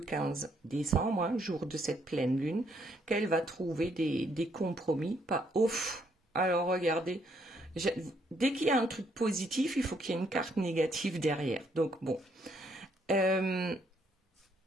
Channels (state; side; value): normal; both; correlation 0.71